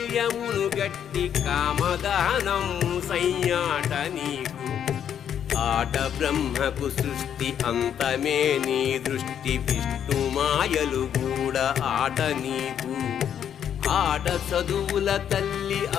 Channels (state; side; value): quieter; right; 9.0 dB